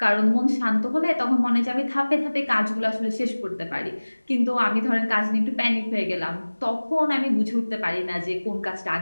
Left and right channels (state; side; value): inverted; both; correlation -1.00